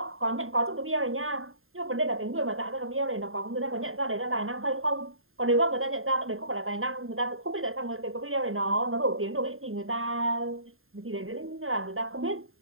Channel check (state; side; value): late; left; 0.61 ms